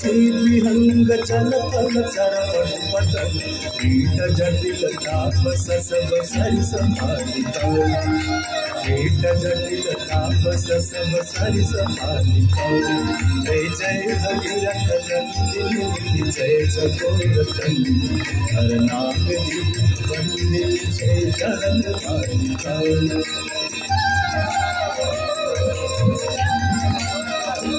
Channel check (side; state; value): both; identical; correlation 1.00